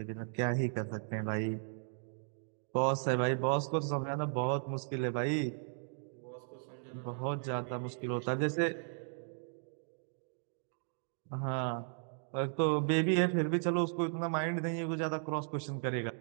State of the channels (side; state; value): left; silent; digital silence